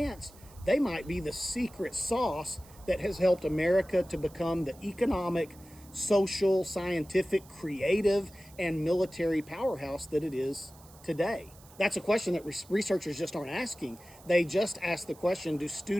they might be the secret sauce that has helped America to become the economic, social, scientific, creative, and military powerhouse that it is today. That's a question that researchers just aren't asking. They just ask the question, do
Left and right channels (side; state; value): right; noise; hiss, 24 dB below the sound